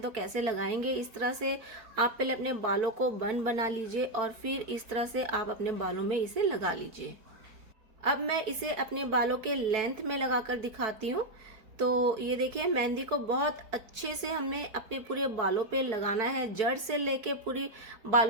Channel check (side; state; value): left; late; 4.6 ms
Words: तो कैसे लगाएंगे। इस तरह से आप पहले अपने बालों को बन बना लीजिए, और फिर इस तरह से आप अपने बालों में इसे लगा लीजिए। अब मैं इसे अपने बालों के लेंथ में लगाकर दिखाती हूँ। तो ये देखिए, मेहंदी को बहुत अच्छे से हमें अपने पूरे बालों पे लगाना है, जड़ से लेके पूरी